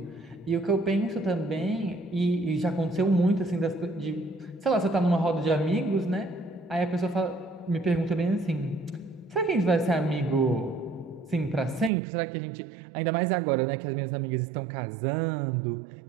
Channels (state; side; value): drops out; left; at 11.9 s